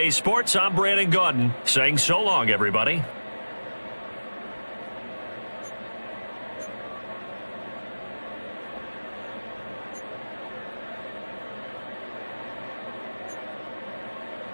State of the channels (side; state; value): both; inverted; correlation -1.00